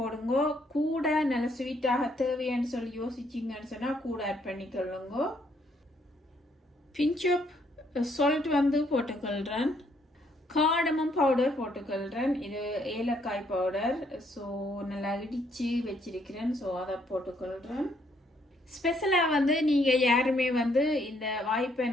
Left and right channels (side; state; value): both; normal; correlation 0.70